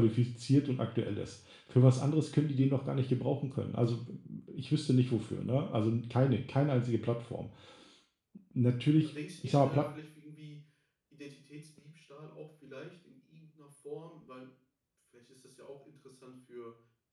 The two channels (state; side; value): identical; both; correlation 1.00